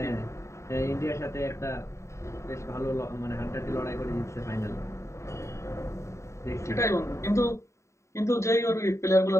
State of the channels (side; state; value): right; late; 0.14 ms